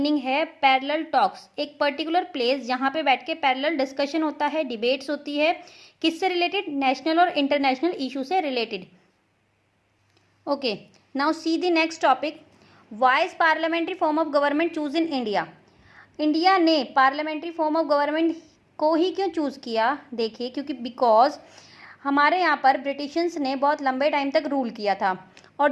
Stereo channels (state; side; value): identical; both; correlation 1.00